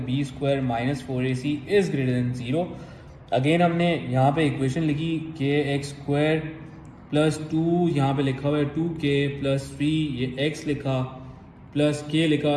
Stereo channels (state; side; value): identical; both; correlation 1.00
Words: b square minus 4ac is greater than 0. Again हमने यहाँ पे इक्वेशन लिखी kx स्क्वायर प्लस 2 यहाँ पे लिखा हुआ है 2k प्लस 3 ये x लिखा प्लस k लिखा